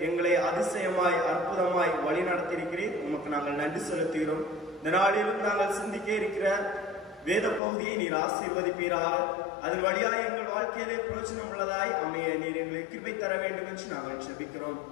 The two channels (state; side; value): drops out; right; at 7.6 s